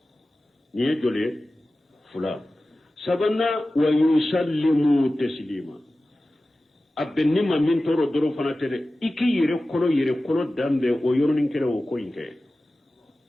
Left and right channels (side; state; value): both; normal; correlation 0.95